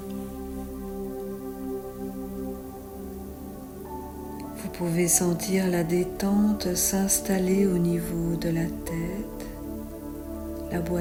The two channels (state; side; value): identical; both; correlation 1.00